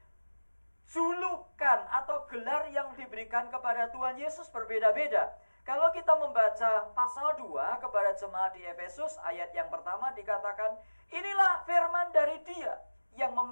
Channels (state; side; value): inverted; both; correlation -1.00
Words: julukan atau gelar yang diberikan kepada Tuhan Yesus berbeda-beda. Kalau kita membaca pasal 2 kepada jemaat di Efesus, ayat yang pertama dikatakan, inilah firman dari Dia yang